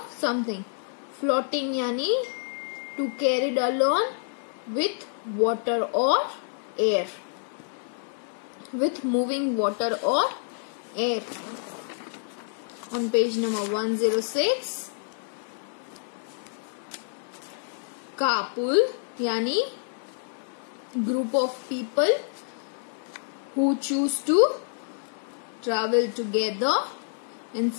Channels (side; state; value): right; silent; 59 dB below the other